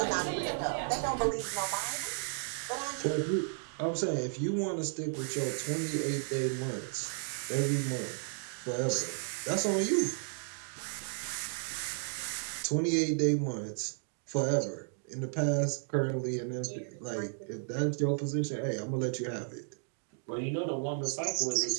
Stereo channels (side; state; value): left; silent; digital silence